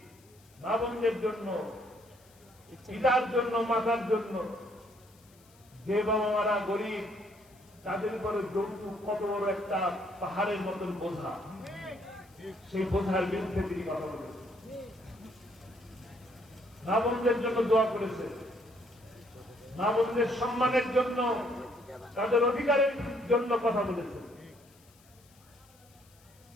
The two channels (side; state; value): left; noise; hiss, 29 dB below the sound